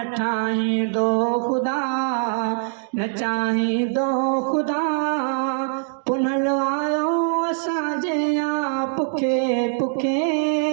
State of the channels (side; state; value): left; silent; digital silence